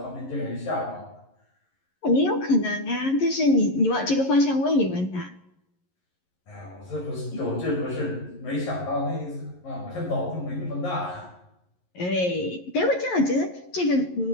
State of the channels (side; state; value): right; late; 11 ms